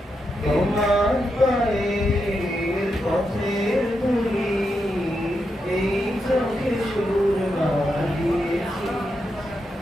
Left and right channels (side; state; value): both; normal; correlation 0.85